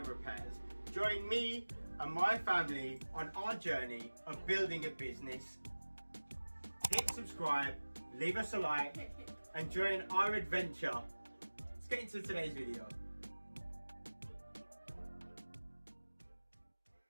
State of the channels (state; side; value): inverted; both; correlation -1.00